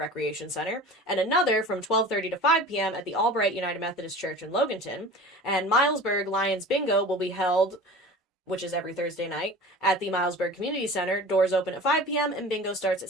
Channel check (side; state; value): both; normal; correlation 0.38